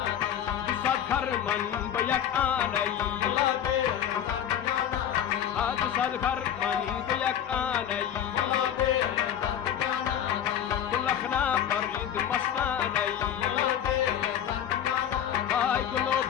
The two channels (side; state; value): right; quieter; 9.8 dB